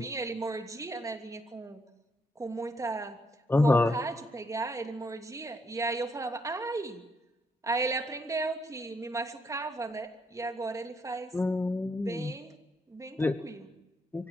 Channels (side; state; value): both; normal; correlation 0.75